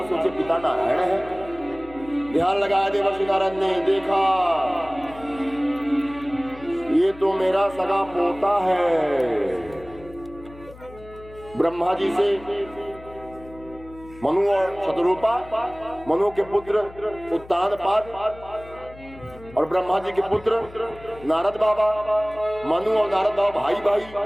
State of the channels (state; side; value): noise; left; hum, 19 dB below the sound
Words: सोचे पिता नारायण है। ध्यान लगाया देवर्षि नारद ने, देखा ये तो मेरा सगा पोता है। ब्रह्मा जी से मनु और शतरूपा, मनु के पुत्र उत्तानपाद और ब्रह्मा जी के पुत्र नारद बाबा। मनु और नारद बाबा भाई भाई,